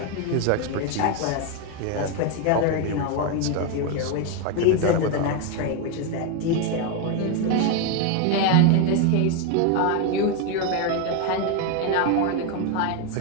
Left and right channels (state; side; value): different; both; correlation 0.02